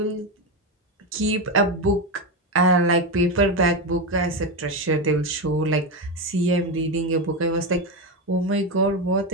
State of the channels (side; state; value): both; normal; correlation 0.13